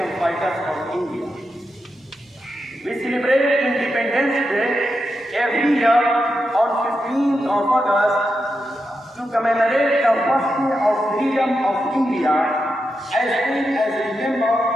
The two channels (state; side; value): normal; both; correlation 0.87